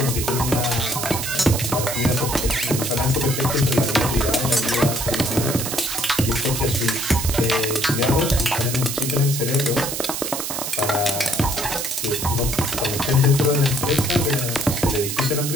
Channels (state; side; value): noise; right; hiss, 4 dB below the sound